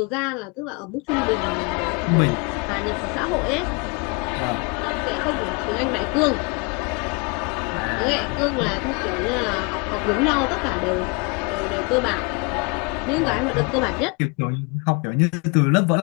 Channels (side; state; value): right; quieter; 31.3 dB